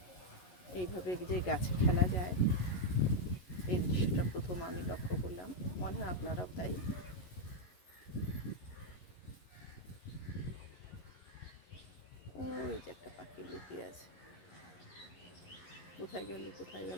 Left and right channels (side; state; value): right; late; 11 ms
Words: এইভাবে যে গাছে খেলা যায়, এই দৃশ্যটা প্রথম আমি লক্ষ্য করলাম, মনে হয় আপনারাও তাই। ওই যে একটা পাখি লুকিয়ে আছে, কোথায় গেল কোথায়